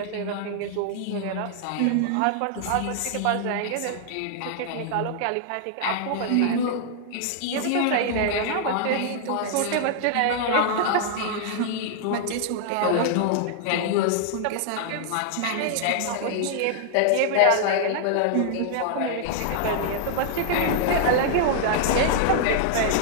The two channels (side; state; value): both; different; correlation -0.01